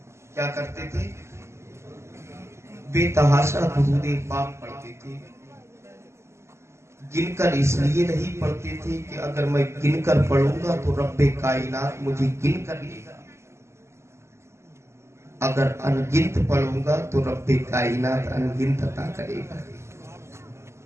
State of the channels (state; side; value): late; left; 0.13 ms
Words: کیا کرتے تھے؟ بے تحاشا درود پاک پڑھتے تھے۔ گن کر اس لیے نہیں پڑھتے تھے کہ اگر میں گن کر پڑھوں گا تو رب کائنات مجھے گن کر لے گا، اگر انگنت پڑھوں گا تو رب کائنات انگنت عطا کرے گا۔